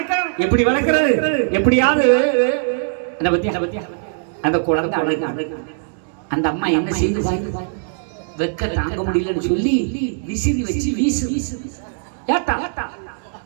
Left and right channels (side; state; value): left; silent; digital silence